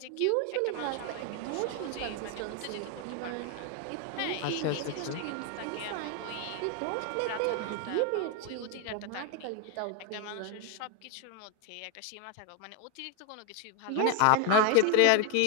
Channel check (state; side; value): different; both; correlation 0.00